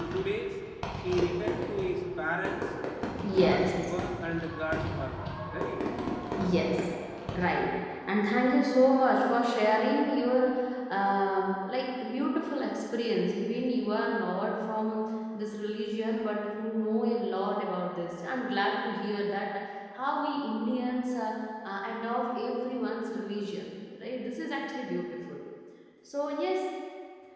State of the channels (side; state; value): both; identical; correlation 1.00